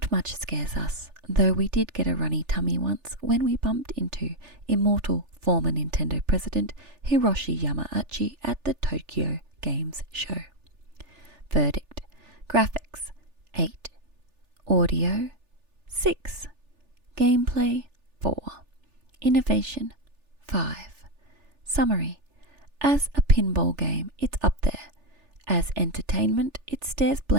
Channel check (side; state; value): left; late; 3.4 ms